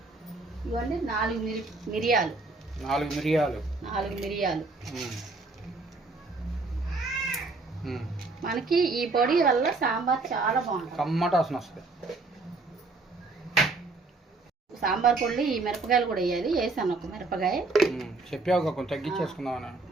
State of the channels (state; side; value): quieter; left; 3.6 dB